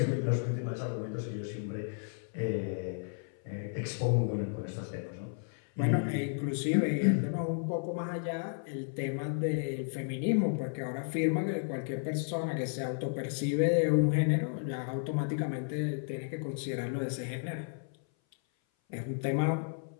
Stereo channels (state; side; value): silent; right; 56 dB below the other